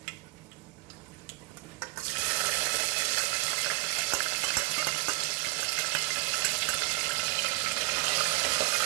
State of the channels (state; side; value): quieter; left; 22.3 dB